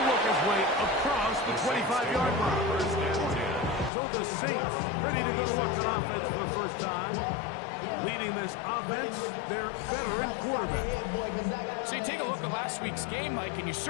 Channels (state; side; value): drops out; right; at 3.9 s